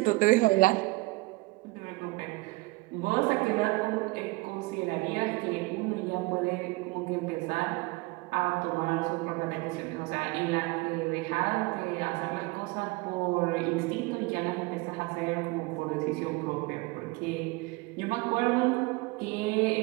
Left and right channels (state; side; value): quieter; left; 23.5 dB